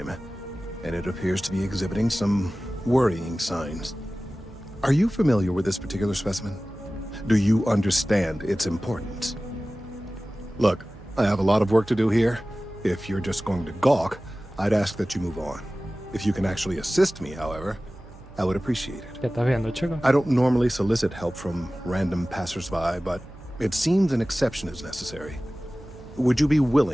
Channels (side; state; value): right; noise; hum, 19 dB below the sound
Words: and it appears to be exhibiting some worrying signs. Are you familiar with this particular specimen? Do you understand its importance? Look, I have a lot of work to do here. If you're just going to gawk, I'd ask that you move on. If you can actually assist me, however, I would appreciate it. ¿Qué estás viendo, chico? I don't normally solicit help from random passersby, but it seems an exception is necessary. Would you be